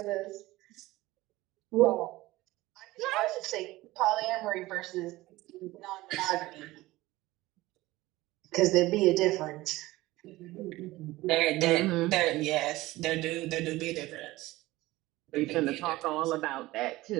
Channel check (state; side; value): quieter; left; 18.4 dB